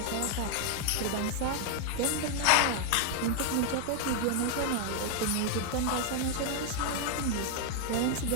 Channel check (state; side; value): different; both; correlation 0.00